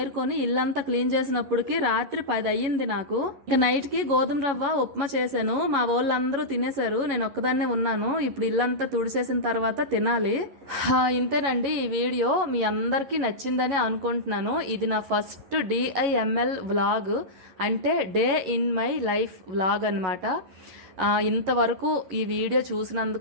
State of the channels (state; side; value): late; left; 11 ms